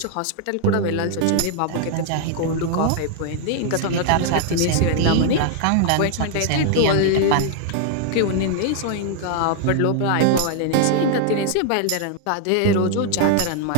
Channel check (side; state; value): both; different; correlation 0.00